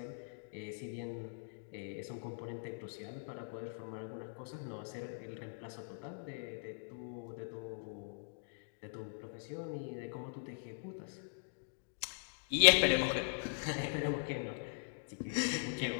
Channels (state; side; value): silent; right; digital silence